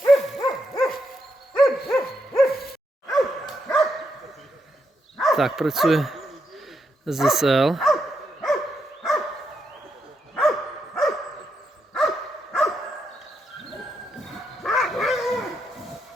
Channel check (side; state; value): both; normal; correlation 0.81